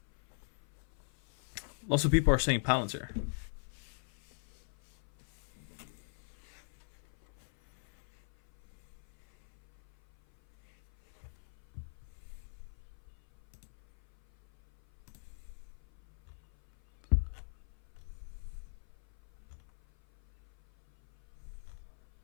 Lots of people are saying Palantir.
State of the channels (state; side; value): silent; right; 51 dB below the other